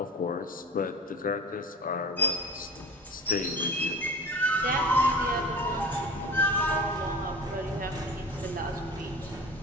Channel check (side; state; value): both; normal; correlation 0.36